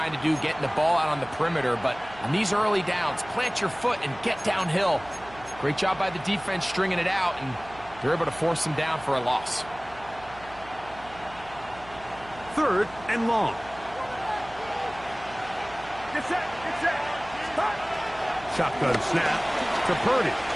to do, getting the ball out on the perimeter, but on these early downs, plant your foot and get downhill. Great job by the defense stringing it out, and they're able to force them down for a loss. 3rd and long. Get set. Shotgun snap to Purdy.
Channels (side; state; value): right; noise; hum, 20 dB below the sound